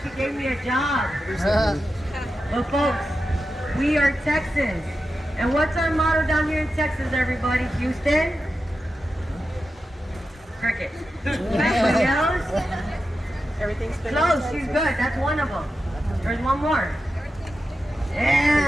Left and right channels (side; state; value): both; normal; correlation 0.91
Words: gave me a job. But folks, we are Texans. And what's our motto down here in Texas, everybody? Houston? Cricket. Anybody else? Everything's been Close, she's good. That's one of them. There's one more.